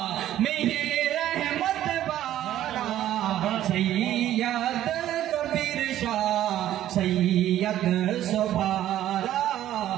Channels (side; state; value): left; quieter; 12.6 dB